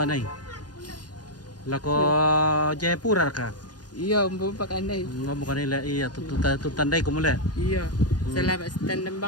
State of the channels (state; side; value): late; right; 0.69 ms